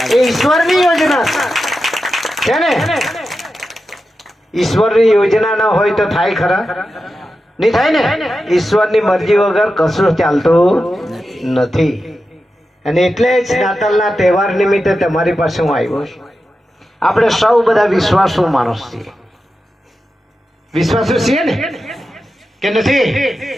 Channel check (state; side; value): normal; both; correlation 0.91